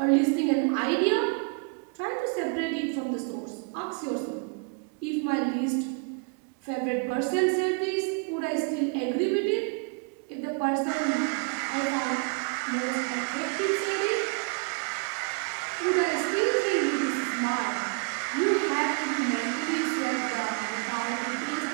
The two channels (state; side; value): quieter; left; 35.5 dB